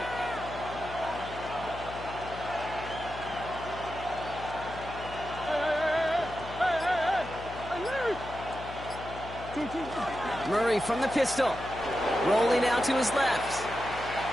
Murray from the pistol. Rolling out to his left.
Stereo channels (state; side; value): noise; left; hum, 12 dB below the sound